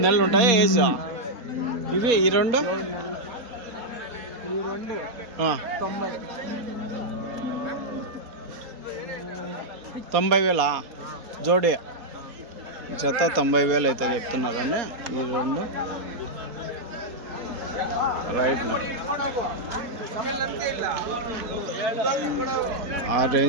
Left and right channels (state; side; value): late; left; 4.2 ms